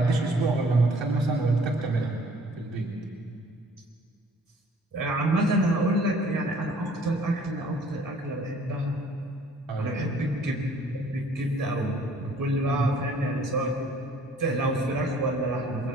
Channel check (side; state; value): both; normal; correlation 0.56